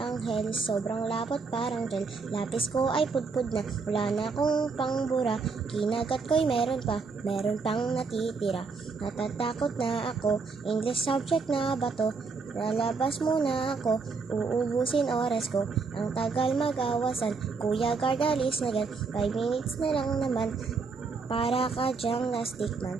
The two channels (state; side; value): quieter; left; 4.7 dB